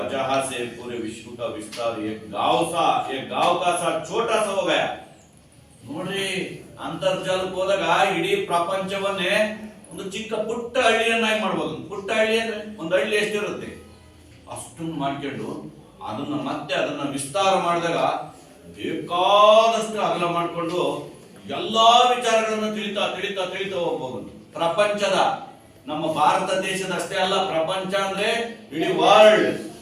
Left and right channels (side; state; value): both; identical; correlation 1.00